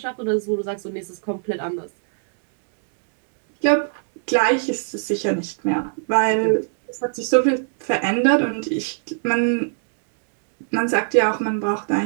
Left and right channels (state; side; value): silent; left; digital silence